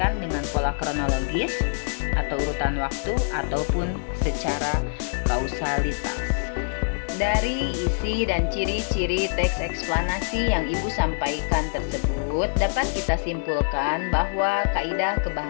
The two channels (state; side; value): silent; right; digital silence